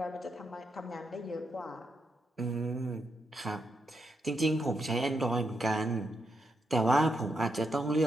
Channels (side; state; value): both; normal; correlation 0.82